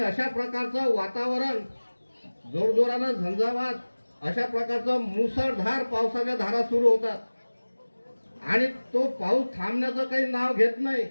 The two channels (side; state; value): both; inverted; correlation -1.00